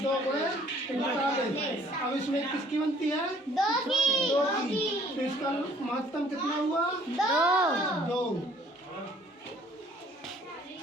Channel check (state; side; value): normal; both; correlation 0.58